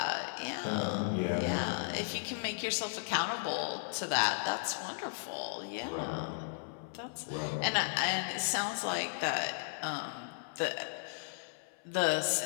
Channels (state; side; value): silent; right; 54 dB below the other